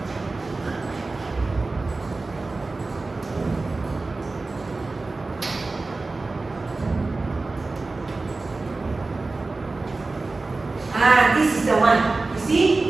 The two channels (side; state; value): left; quieter; 3.5 dB